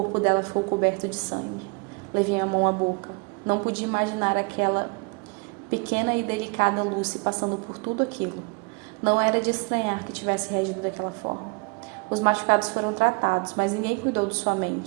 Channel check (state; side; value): quieter; left; 31.9 dB